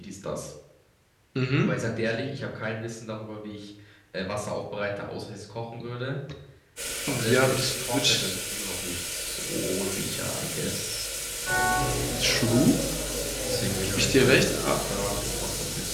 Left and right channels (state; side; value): identical; both; correlation 1.00